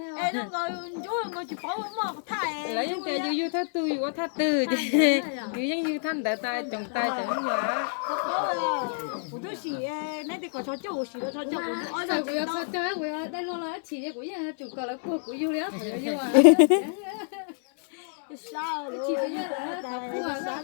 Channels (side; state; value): right; silent; 59 dB below the other